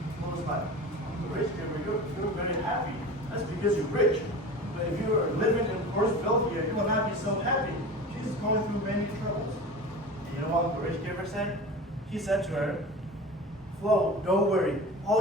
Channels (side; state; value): both; normal; correlation 0.34